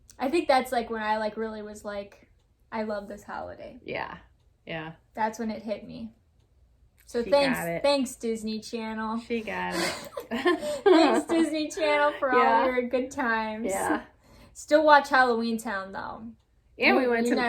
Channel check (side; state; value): both; identical; correlation 1.00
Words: I think that's like when I like really was like, I love this holiday. Yeah. Yeah. That's when it hit me. So she thanks Disney Channel. She got it. Thanks Disney Channel for all your good times. Yeah. Still watch Halloween Town though. And we went